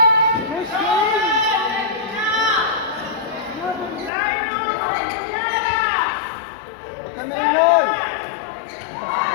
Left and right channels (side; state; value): right; drops out; at 4.1 s